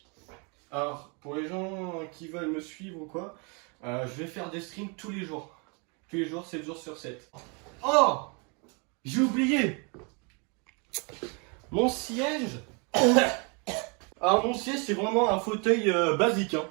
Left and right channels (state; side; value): quieter; left; 33.3 dB